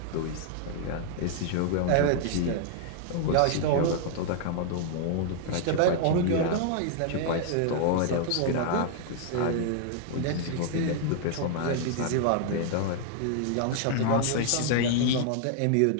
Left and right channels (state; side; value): different; both; correlation 0.00